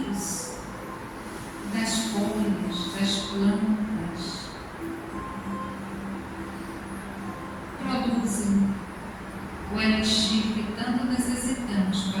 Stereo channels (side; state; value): both; identical; correlation 1.00